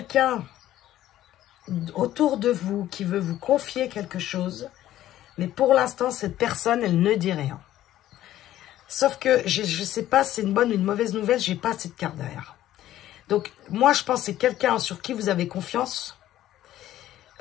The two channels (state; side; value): quieter; right; 13.4 dB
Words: autour de vous qui veut vous confier quelque chose, mais pour l'instant, cette personne, elle ne dit rien. Sauf que, je ne sais pas si c'est une bonne ou une mauvaise nouvelle, je n'ai pas cette carte derrière. Donc, moi, je pense que c'est quelqu'un sur qui vous avez confiance.